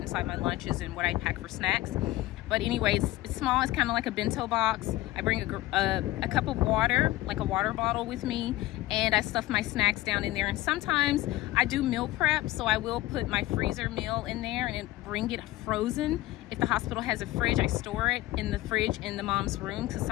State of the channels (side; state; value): right; quieter; 17.1 dB